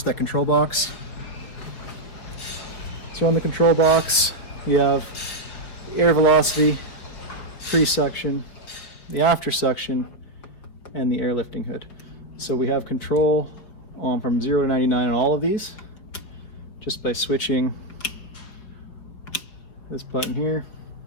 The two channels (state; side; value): late; right; 4.9 ms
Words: that control box. So on the control box, we have the air velocity, pre-suction, the after suction, and the air lifting hood. So we have control from 0 to 99 on all of these, just by switching this button here.